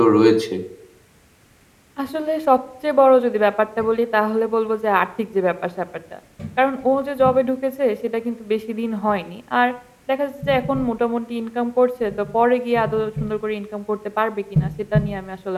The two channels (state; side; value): identical; both; correlation 1.00